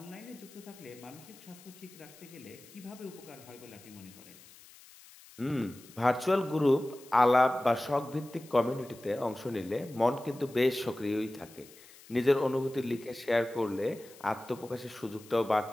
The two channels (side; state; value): left; noise; hiss, 22 dB below the sound